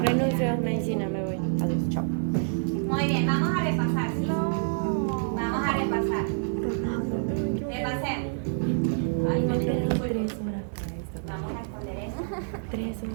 Renuncio a medicina, me voy. Adiós, chao. Muy bien, vamos a repasar, ¿sí? Vamos a repasar. Repasemos. Ay, no me disculpo. 3 horas para esto. Vamos a esconder eso. 3 horas.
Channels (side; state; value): left; silent; 60 dB below the other